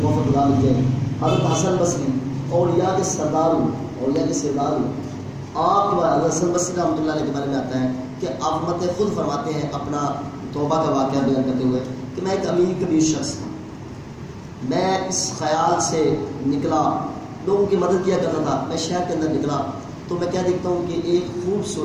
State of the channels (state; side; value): identical; both; correlation 1.00